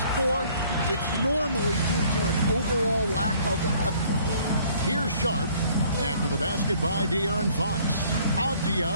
poor, it's normally due to an overall lack of effort. Here's Sharp after the basket by De'Aaron Fox.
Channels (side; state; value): both; inverted; correlation -0.58